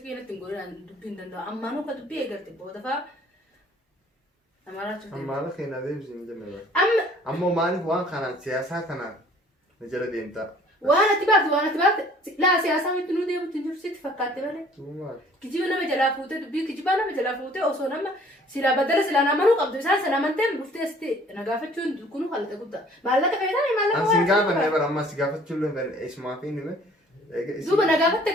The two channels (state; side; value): normal; both; correlation 0.54